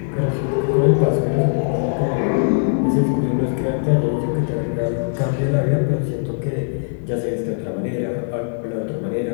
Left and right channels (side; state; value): right; silent; digital silence